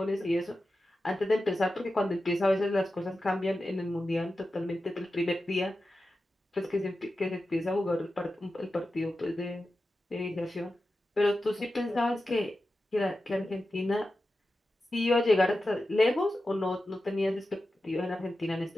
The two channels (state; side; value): normal; both; correlation 0.92